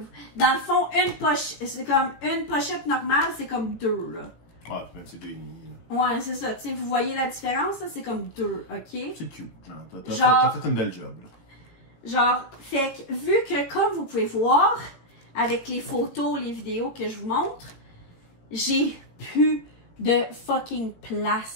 Dans le fond, une pochette, c'est comme une pochette normale, c'est comme deux, là. Ouais, même c'est 2,5. Ouais, c'est ça. Tu sais, vous voyez la différence, là, c'est comme deux, OK? C'est cute. T'as fait une belle job, là. Genre, fait que, vu que, comme vous pouvez voir, avec les photos, les vidéos que je vous montre, j'ai plus de fucking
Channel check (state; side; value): late; right; 17 ms